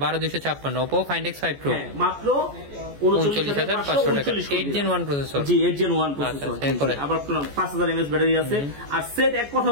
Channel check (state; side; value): late; left; 14 ms